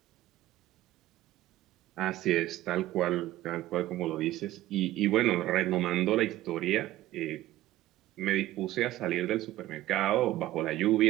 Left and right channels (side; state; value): left; quieter; 15.3 dB